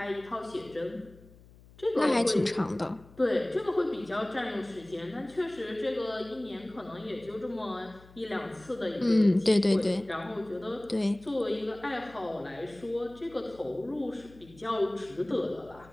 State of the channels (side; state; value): left; noise; hum, 23 dB below the sound